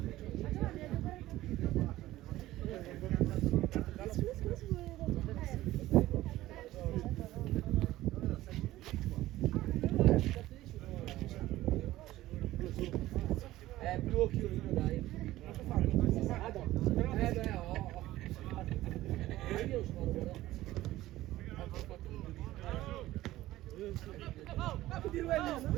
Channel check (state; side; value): quieter; left; 15.9 dB